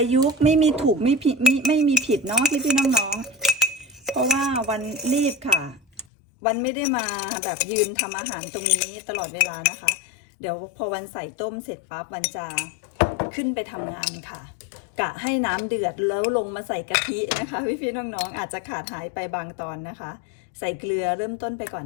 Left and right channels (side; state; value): right; drops out; at 6.1 s